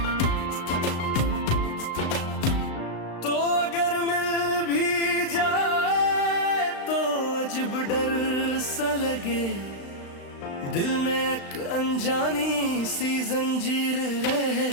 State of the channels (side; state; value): right; late; 35 ms